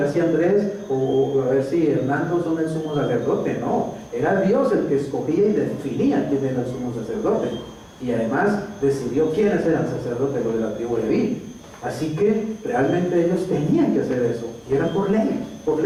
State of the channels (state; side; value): identical; both; correlation 1.00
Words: si Andrés o a ver si Hernando son el sumo sacerdote. No, era Dios el que escogía y definía quién era el sumo sacerdote, y además decidió quiénes eran sacerdotes, los de la tribu de Leví. Así que realmente ellos tenían que hacer eso, y era por ley, por